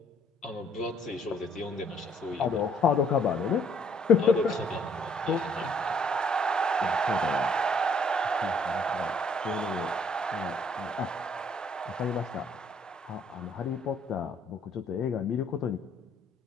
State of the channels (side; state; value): both; normal; correlation 0.64